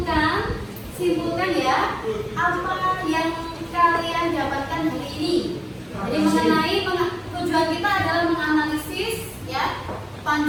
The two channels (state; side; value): identical; both; correlation 1.00